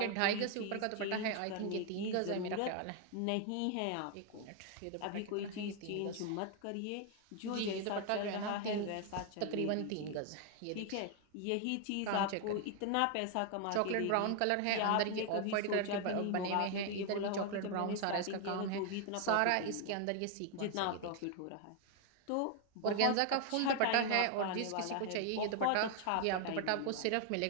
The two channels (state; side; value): different; both; correlation 0.00